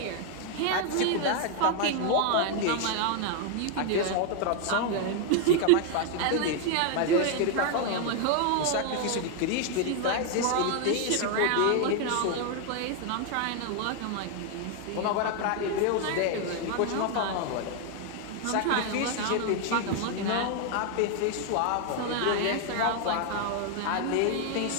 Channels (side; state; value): both; different; correlation 0.00